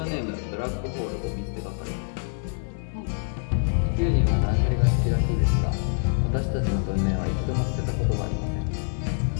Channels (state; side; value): silent; right; 61 dB below the other